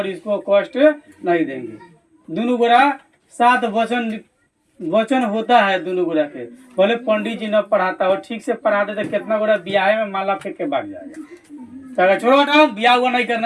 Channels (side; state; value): both; identical; correlation 1.00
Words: इसको कष्ट नहीं देंगे। दोनों गोरा 7 वचन होता है दोनों गोरा के। भले पंडित जी न पढ़ाता हो, ठीक से पढ़ाते तो कितना गोरा ब्याह में माला फेंक के भाग जाएगा। तो छोड़ो हटाओ, ब्याह हुआ नहीं